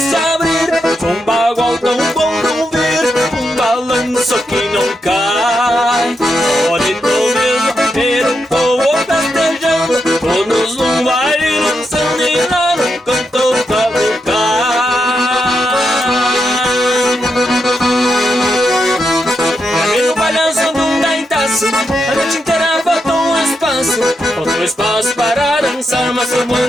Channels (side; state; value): both; normal; correlation 0.84